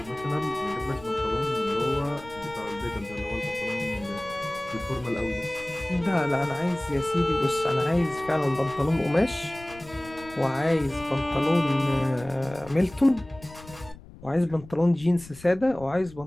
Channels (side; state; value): left; noise; rumble, 19 dB below the sound